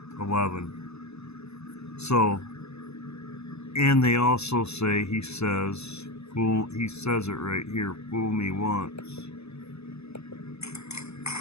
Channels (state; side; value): late; right; 0.79 ms